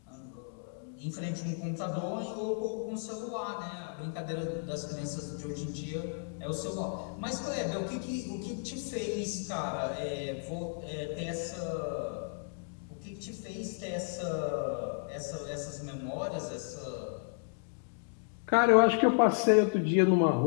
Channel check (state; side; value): silent; right; digital silence